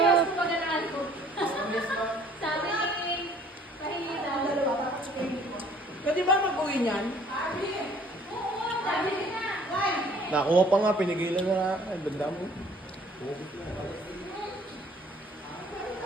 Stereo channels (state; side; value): normal; both; correlation 0.56